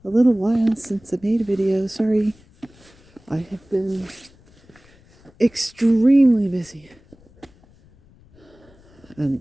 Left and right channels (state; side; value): noise; left; rumble, 28 dB below the sound